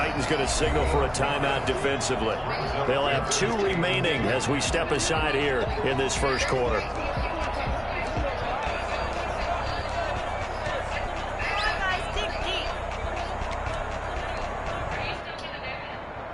going to signal for a timeout defensively. They'll have 2 remaining as we step aside here in this first quarter.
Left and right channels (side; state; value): both; identical; correlation 1.00